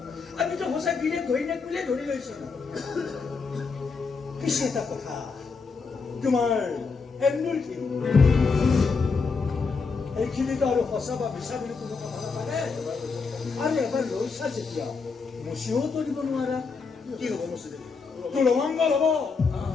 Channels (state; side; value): quieter; right; 4.8 dB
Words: আমিতো সঁচা গিৰিয়েক ঘৈণীয়েক বুলিয়ে ধৰি লৈছিলো পিছে এটা কথা তোমাৰ এন্দুৰখিনি এইখিনিতো আৰু সঁচা বা মিছা বুলি কোনো কথা নাথাকে আৰু এবাৰ লৈছা যেতিয়া মচিও দিব নোৱাৰা কি হ'ব মচি তোৰ অমংগল হ'ব